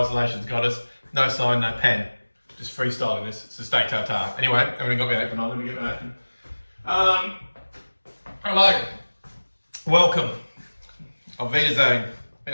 got us. No sign, no pen. Just freestyling this. It's a steak tartare. Anyway, I've only got my apron on. Let me get my apron. Hello. Welcome. Auf Wiedersehen. I think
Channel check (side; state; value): both; inverted; correlation -1.00